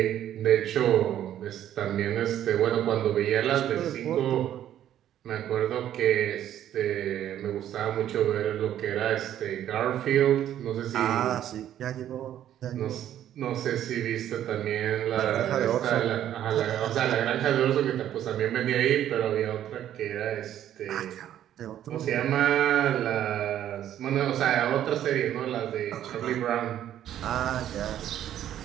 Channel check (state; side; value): quieter; left; 11.3 dB